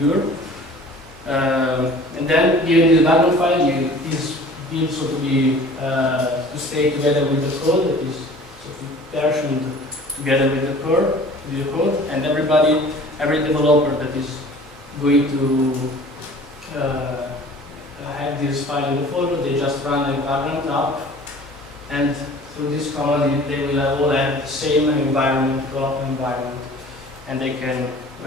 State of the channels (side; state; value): both; normal; correlation 0.46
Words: And then given the Vagrant file, is built so to stay together with the code, that is so to version together with the core. your code, and every developer that is going to have this file in the folder, they just run a background app, and through this command they will all have the same environment, development environment, and they can